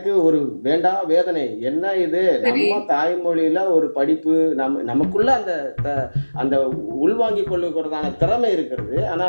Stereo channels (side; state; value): both; inverted; correlation -1.00